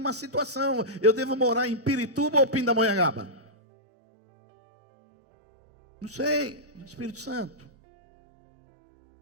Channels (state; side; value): normal; both; correlation -0.12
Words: situação, eu devo morar em Pirituba ou Pindamonhangaba? Não sei, Espírito Santo,